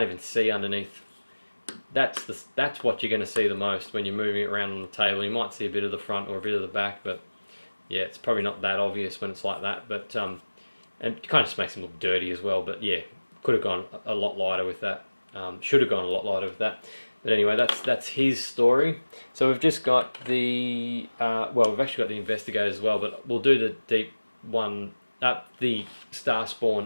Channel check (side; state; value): both; inverted; correlation -1.00